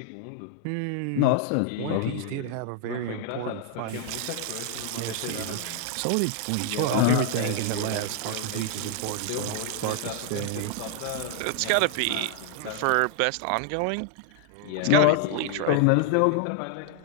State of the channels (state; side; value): different; both; correlation 0.00